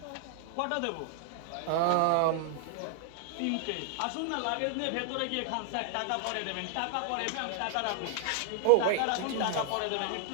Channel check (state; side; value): different; both; correlation 0.00